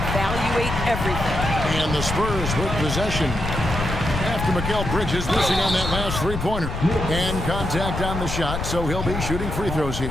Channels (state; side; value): noise; left; rumble, 5 dB below the sound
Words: everything. And the Spurs with possession after Mikal Bridges missing on that last three-pointer. And contact on the shot, so he'll be shooting free throws